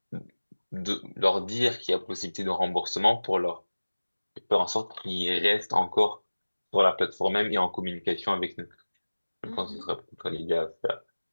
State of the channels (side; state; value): both; inverted; correlation -1.00